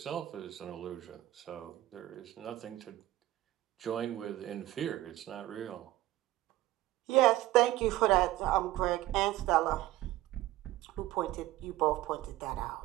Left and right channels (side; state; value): left; quieter; 15.8 dB